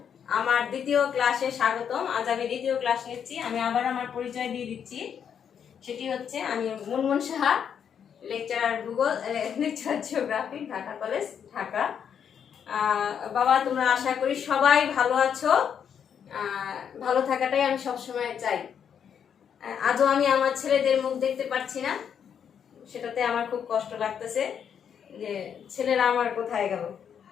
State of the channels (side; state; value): right; quieter; 8.0 dB